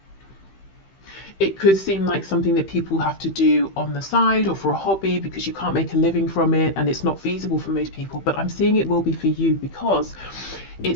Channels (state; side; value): late; right; 15 ms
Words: It could seem like something that people have to do on the side or for a hobby, because you can't make a living from it and it's not feasible for most people. But I'm seeing it will be for you because